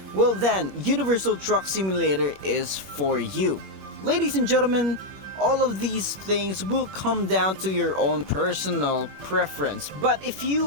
well then, Universal Truck Simulator is for you. Ladies and gentlemen, all of these things will come down to your own personal preference. But if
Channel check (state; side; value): late; left; 21 ms